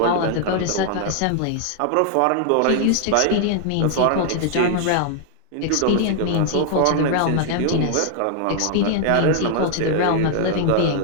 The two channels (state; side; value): different; both; correlation 0.00